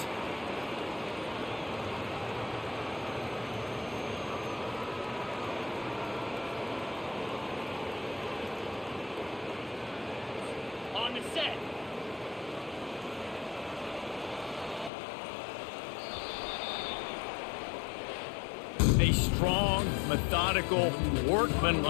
On the set. A strong, methodical,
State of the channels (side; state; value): right; drops out; at 14.9 s